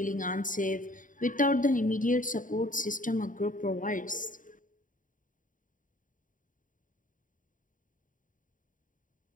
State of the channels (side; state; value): right; late; 0.38 ms